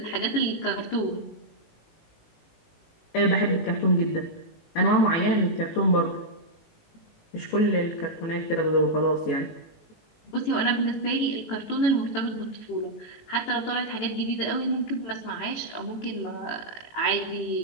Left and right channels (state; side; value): late; right; 18 ms